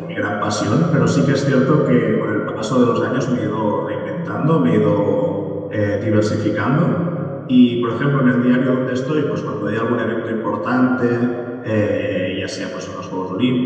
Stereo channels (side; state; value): both; identical; correlation 1.00